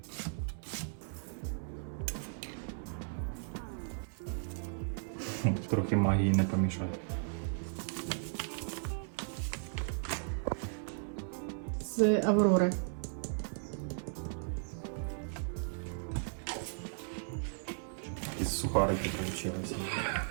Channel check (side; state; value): left; silent; 54 dB below the other